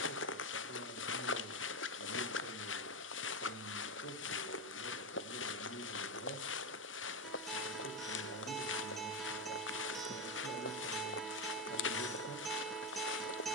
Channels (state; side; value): normal; both; correlation 0.12